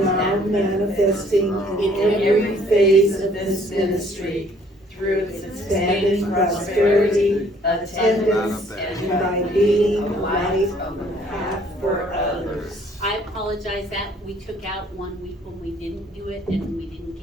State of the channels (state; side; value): normal; both; correlation 0.60